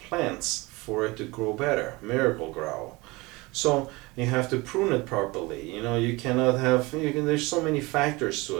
for it to grow better, miracle grow. So you have to prune it properly. You know, you cannot have, there's so many factors to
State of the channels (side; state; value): left; quieter; 23.5 dB